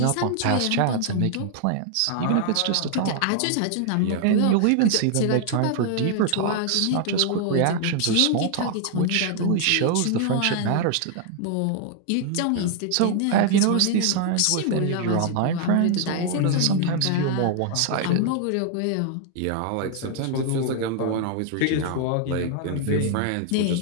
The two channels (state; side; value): different; both; correlation 0.00